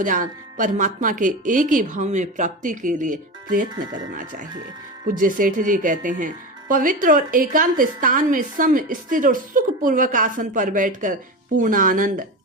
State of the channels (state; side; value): normal; both; correlation 0.23